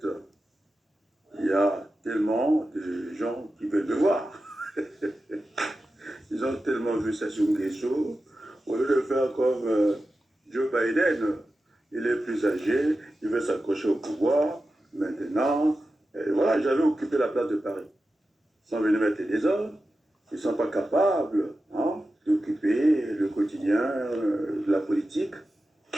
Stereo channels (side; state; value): both; normal; correlation 0.92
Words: il y a tellement de gens qui veulent me voir. Ils ont tellement vu Sassou Nguesso, au lieu de faire comme Joe Biden, il est plus âgé, il veut s'accrocher au pouvoir. Maintenant, voilà, j'avais occupé la place de Paris. Ils sont venus mettre des ordres, ils ne sont pas capables d'occuper le quotidien de la politique.